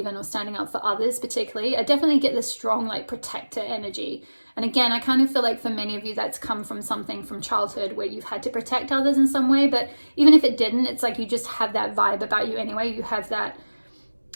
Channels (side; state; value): both; inverted; correlation -1.00